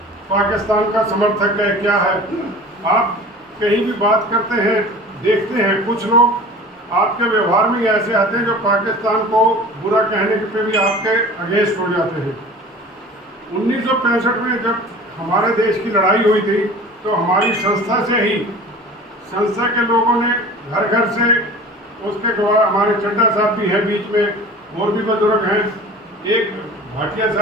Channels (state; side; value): normal; both; correlation 0.40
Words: पाकिस्तान का समर्थक है, क्या है। आप कहीं भी बात करते हैं, देखते हैं कुछ लोग आपके व्यवहार में ऐसे आते हैं जो पाकिस्तान को बुरा कहने पे भी आपके अगेंस्ट हो जाते हैं। 1965 में जब हमारे देश की लड़ाई हुई थी तो हमारी संस्था से ही, संस्था के लोगों ने घर घर से, उसके गवाह हमारे चड्डा साहब भी हैं बीच में और भी बुजुर्ग हैं, एक भाटिया